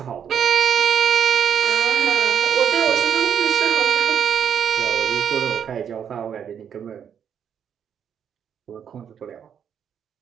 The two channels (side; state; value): left; quieter; 8.3 dB